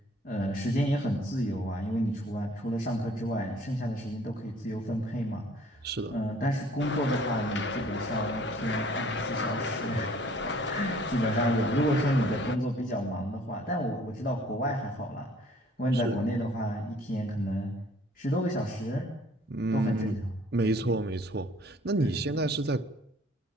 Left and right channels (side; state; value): both; normal; correlation 0.56